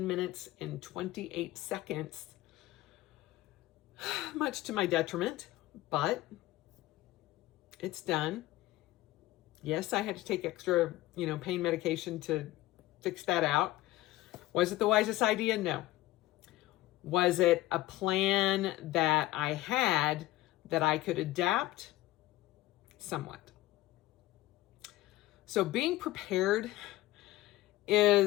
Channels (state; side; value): quieter; right; 17.0 dB